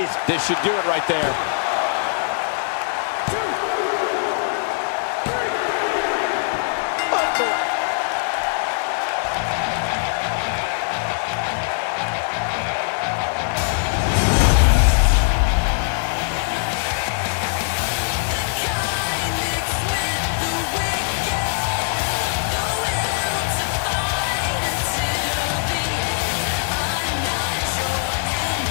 This should do it right there. 2, 3.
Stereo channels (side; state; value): right; silent; digital silence